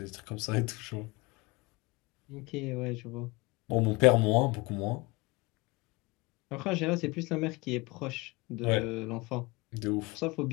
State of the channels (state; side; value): quieter; right; 24.8 dB